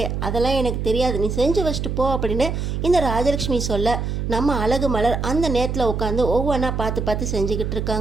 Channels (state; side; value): noise; right; hum, 2 dB below the sound